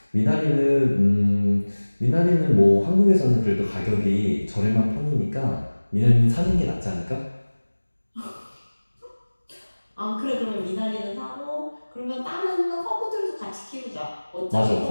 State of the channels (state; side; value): inverted; both; correlation -1.00